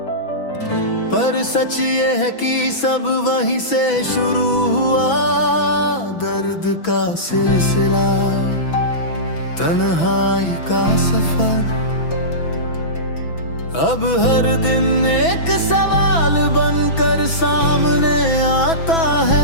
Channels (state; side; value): late; right; 6.0 ms